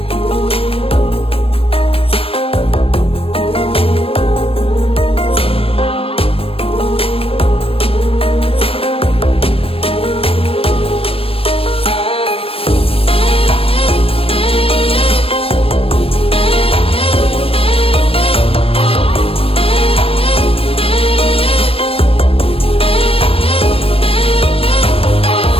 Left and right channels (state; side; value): late; right; 0.28 ms